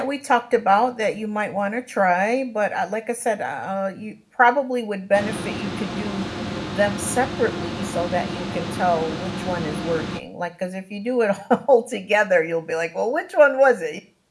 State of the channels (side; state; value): both; identical; correlation 1.00